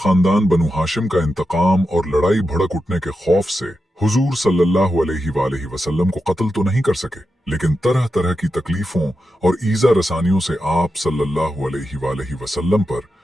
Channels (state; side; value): normal; both; correlation 0.89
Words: बनु हाशिम का इंतकाम और लड़ाई भड़क उठने के खौफ से हुजूर सल्लल्लाहु अलैहि वसल्लम को कत्ल तो नहीं कर सके, लेकिन तरह तरह की तकलीफों और ईजा रसानियों से आप सल्लल्लाहु अलैहि वसल्लम पर